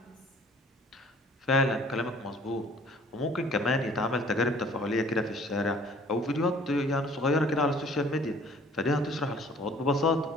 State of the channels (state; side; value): normal; both; correlation 0.53